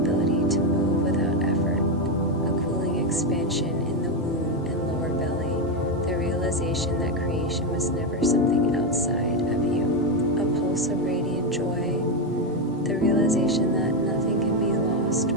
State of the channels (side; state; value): both; normal; correlation 0.08